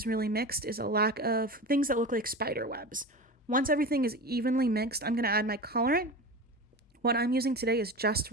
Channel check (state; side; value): normal; both; correlation 0.29